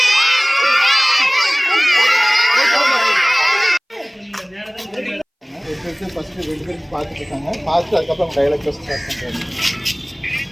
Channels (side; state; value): both; identical; correlation 1.00